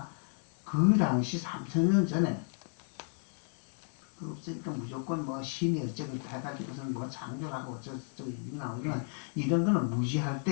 그 당시 3000년 전에 없으니까 무조건 뭐 신이 어쩌고 해가지고선 뭐 창조하고 어쩌고 이런 나오지만 이런 거는 무지할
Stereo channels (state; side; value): silent; right; 56 dB below the other